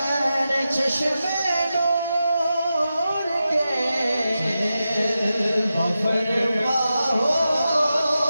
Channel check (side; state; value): both; inverted; correlation -0.91